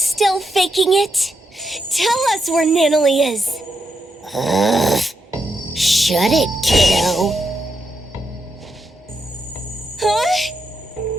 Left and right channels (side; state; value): both; normal; correlation 0.83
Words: faking it? Tell us where Natalie is. Shut it, kiddo. Huh?